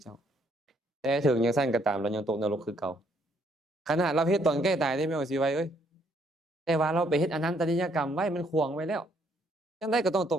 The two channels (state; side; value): normal; both; correlation 0.68